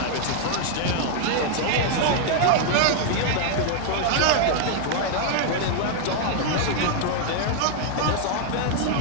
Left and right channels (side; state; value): both; different; correlation 0.00